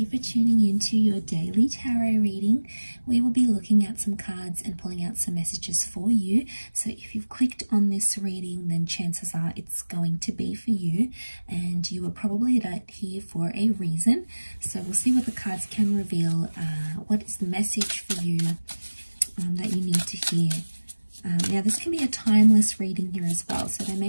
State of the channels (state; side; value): inverted; both; correlation -1.00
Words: for tuning in to your daily tarot reading. We will be looking at some cards and pulling out some messages for you. So if you've clicked on this reading, then chances are it's going to be for you, and you were probably here for a reason. So we'll see what the cards can reveal. What is the message for you that you need to hear? Now this can be a timeless reading here as well, so there